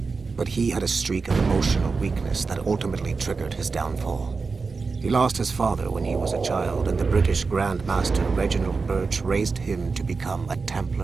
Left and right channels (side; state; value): left; quieter; 4.5 dB